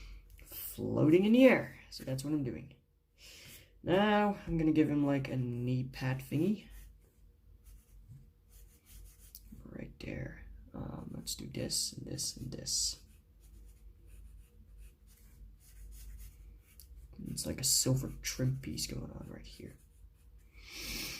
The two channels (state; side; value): identical; both; correlation 1.00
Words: floating in the air. So that's what I'm doing. Now, I'm gonna give him like a knee pad thingy. Right there. Let's do this and this and this. It's like a silver trim piece going on right here.